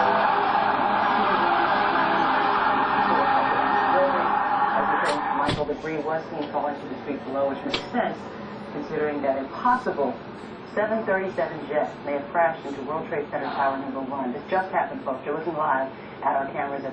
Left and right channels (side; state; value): both; identical; correlation 1.00